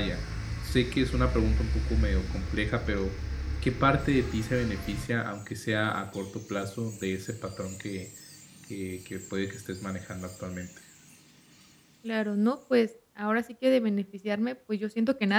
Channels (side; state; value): both; identical; correlation 1.00